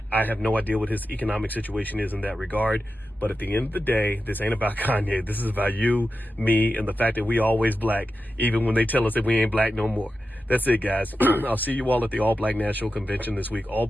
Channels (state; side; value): normal; both; correlation 0.91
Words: I have no idea what his economic situation is in that regard. But at the end of the day, this ain't about Kanye. This is about you, me, and the fact that we always black, even when they tell us that we ain't black no more. That's it, guys. I'll see you all at the All Black National Convention this week. All